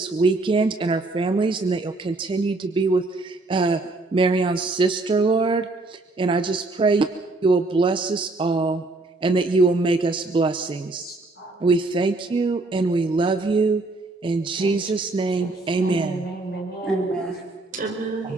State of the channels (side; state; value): left; quieter; 3.2 dB